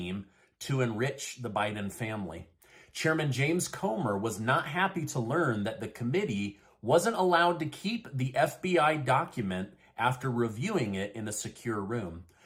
to enrich the Biden family. Chairman James Comer was not happy to learn that the committee wasn't allowed to keep the FBI document after reviewing it in a secure room.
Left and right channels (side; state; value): both; identical; correlation 1.00